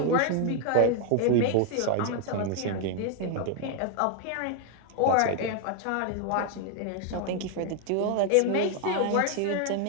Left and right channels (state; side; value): different; both; correlation 0.00